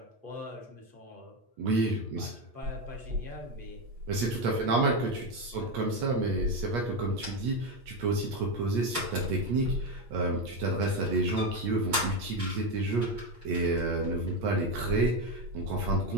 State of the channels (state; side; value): late; left; 8.4 ms